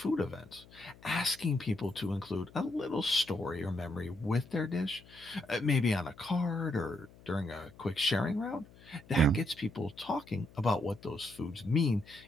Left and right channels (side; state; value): left; noise; hum, 23 dB below the sound